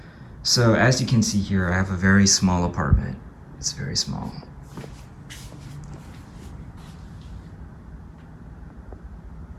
So as you can see here, I have a very small apartment. It's very small.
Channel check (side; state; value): both; identical; correlation 1.00